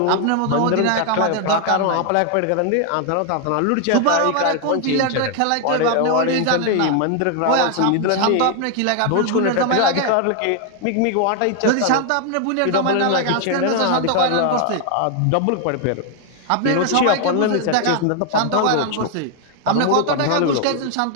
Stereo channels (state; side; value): different; both; correlation 0.00